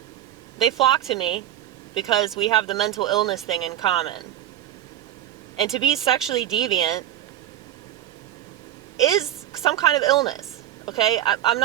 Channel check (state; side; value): quieter; left; 12.3 dB